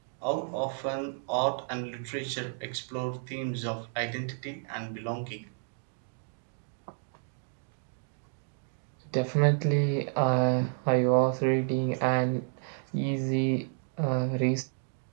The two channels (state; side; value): silent; left; 57 dB below the other